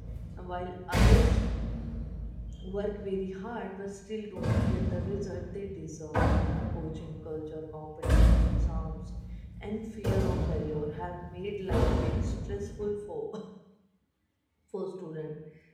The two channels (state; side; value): identical; both; correlation 1.00